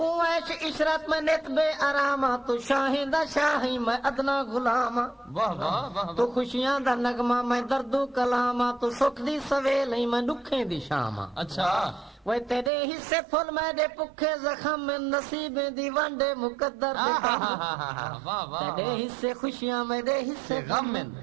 عیش عشرت میں نت بے آراما تو شاہیں دا شاہی میں ادنا غلاما. واہ واہ واہ. تو خوشیاں دا نغمہ میں دردو کلاما تو سکھ دی سویلے میں دکھیں دی شاما. اچھا وہ تیرے حصے پھل میرے پکھے زخم میں نصیبیں دی ونڈے مقدر دے کم. واہ واہ. تیرے حصے خوشیاں میرے حصے غم.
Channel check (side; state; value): left; drops out; at 12.7 s